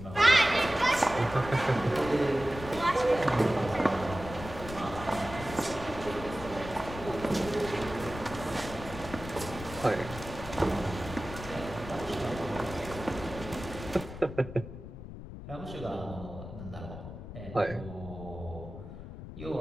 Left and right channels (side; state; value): left; noise; rumble, 11 dB below the sound